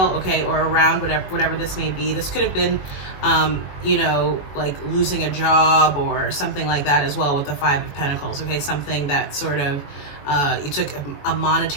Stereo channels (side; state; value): right; late; 21 ms